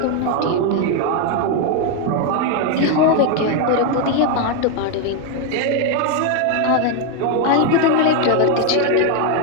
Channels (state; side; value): different; both; correlation 0.01